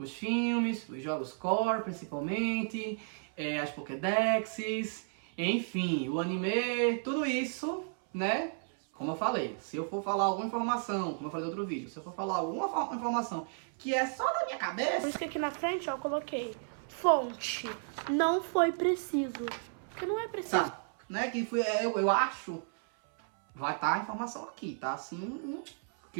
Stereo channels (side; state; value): left; silent; 56 dB below the other